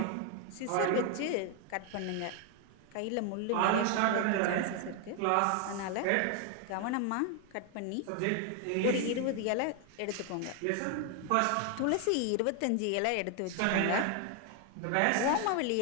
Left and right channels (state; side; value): different; both; correlation 0.00